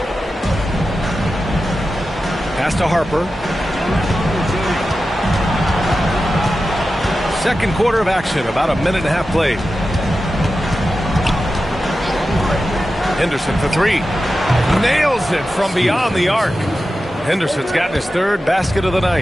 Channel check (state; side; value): normal; both; correlation 0.92